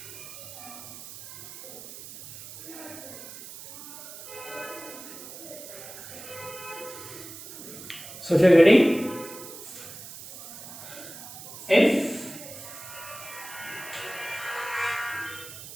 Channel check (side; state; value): right; noise; hiss, 13 dB below the sound